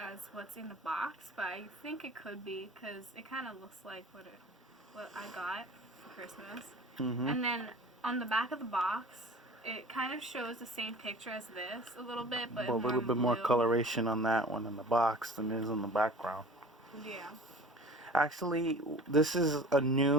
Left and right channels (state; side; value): normal; both; correlation 0.42